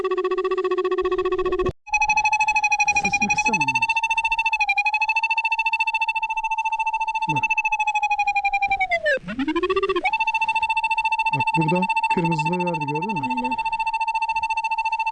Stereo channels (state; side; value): identical; both; correlation 1.00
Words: Sesini kıssana. Bak. Bak burada kırmızılığı verdi, gördün mü? Aynen.